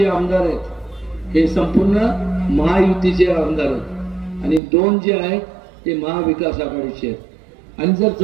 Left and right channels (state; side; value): drops out; left; at 4.6 s